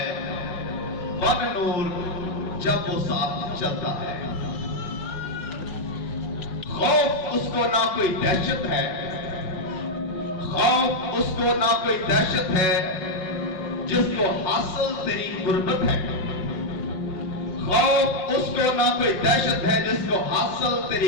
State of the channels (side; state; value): right; late; 5.6 ms